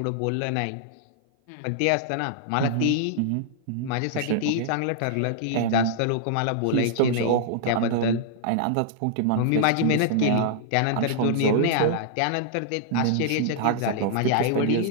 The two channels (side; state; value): both; different; correlation -0.01